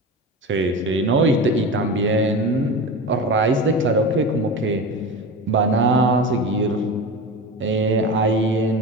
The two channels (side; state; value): both; normal; correlation 0.27